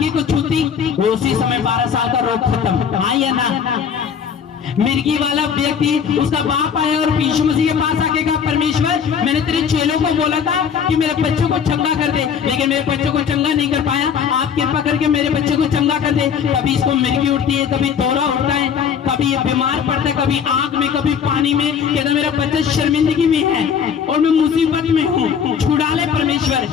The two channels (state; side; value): quieter; right; 7.3 dB